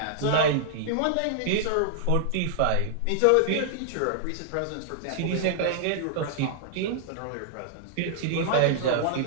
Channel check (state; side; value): different; both; correlation -0.01